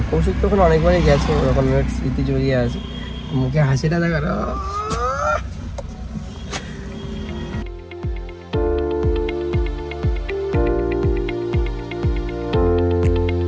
কৌশিক তো ওখানে অনেকবারই গেছে, ওরকম অনেক স্মৃতি জড়িয়ে আছে। মুখে হাসিটা দেখা।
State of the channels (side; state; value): both; identical; correlation 1.00